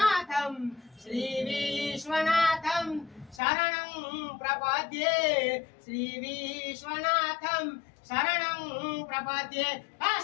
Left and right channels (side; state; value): right; drops out; at 3.4 s